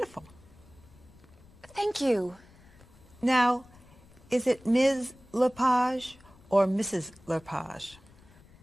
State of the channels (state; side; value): noise; left; rumble, 25 dB below the sound